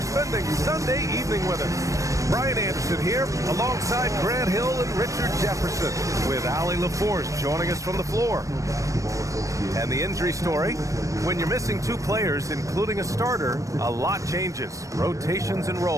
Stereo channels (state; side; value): late; left; 0.16 ms